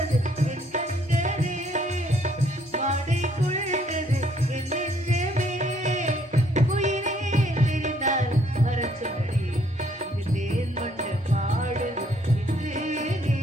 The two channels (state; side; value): normal; both; correlation 0.66